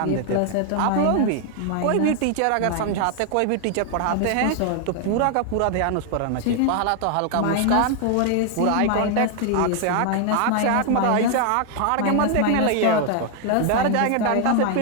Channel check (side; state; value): both; different; correlation 0.00